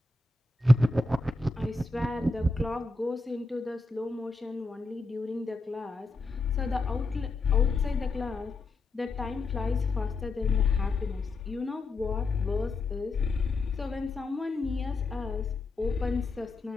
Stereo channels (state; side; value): quieter; right; 3.2 dB